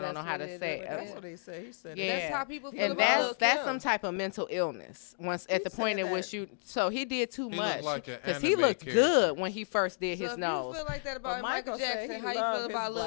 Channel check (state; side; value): silent; right; digital silence